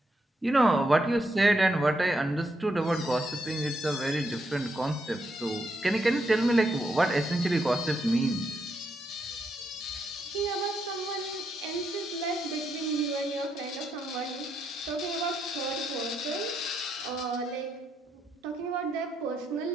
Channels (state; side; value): normal; both; correlation 0.79